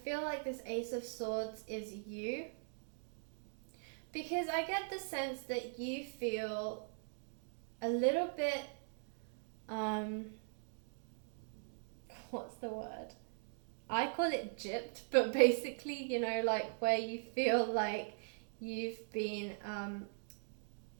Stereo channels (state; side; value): silent; left; digital silence